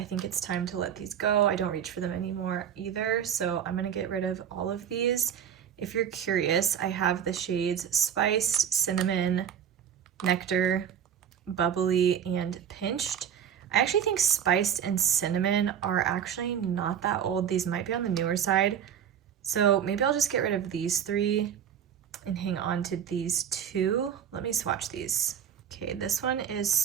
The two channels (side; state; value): left; quieter; 8.8 dB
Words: think it's time to let these go. I don't reach for them anymore either, so I'm gonna get rid of all of these. If you're curious, I have the shades Spiced, Cinnamon, Nectar, Bubbly, and Pinched. I actually think Spiced and Cinnamon are actually not that old. These might be on the newer side, so maybe I'll just get rid of these three and hang on to these two. Let me swatch these. Okay, this one is